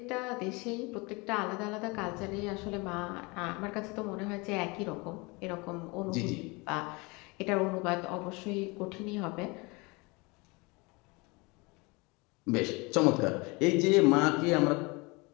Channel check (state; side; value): quieter; right; 26.7 dB